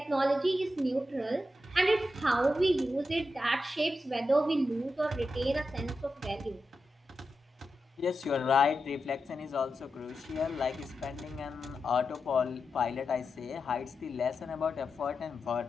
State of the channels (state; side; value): normal; both; correlation 0.89